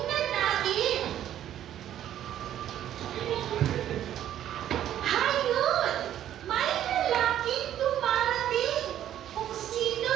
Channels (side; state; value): left; quieter; 11.3 dB